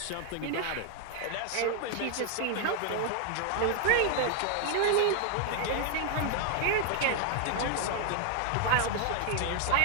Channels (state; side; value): different; both; correlation 0.00